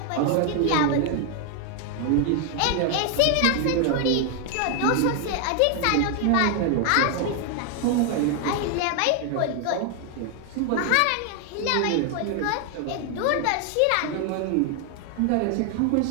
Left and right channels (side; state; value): both; different; correlation 0.00